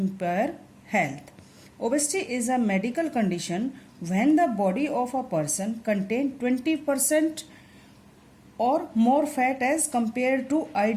health. Obesity is a medical condition when the body of a person contains 20% और more fat as compare to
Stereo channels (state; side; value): identical; both; correlation 1.00